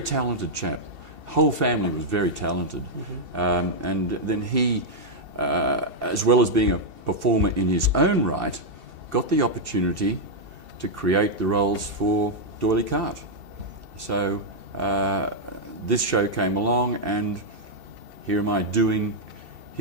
talented chap. Whole family was very talented. Mm-hmm. And then he, as well as being a performer in his own right, got the opportunity to create the roles for D'Oyly Carte. So this show came along, and here am I doing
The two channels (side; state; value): left; late; 2.7 ms